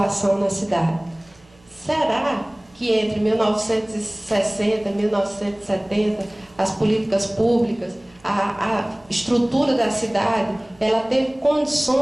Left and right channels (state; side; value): noise; right; hum, 30 dB below the sound